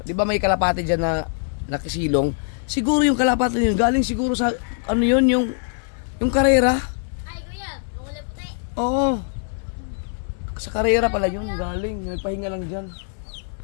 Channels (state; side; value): silent; right; 64 dB below the other